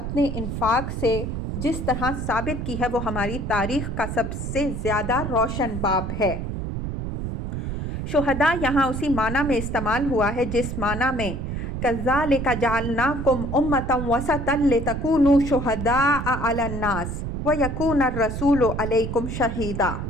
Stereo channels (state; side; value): noise; right; rumble, 4 dB below the sound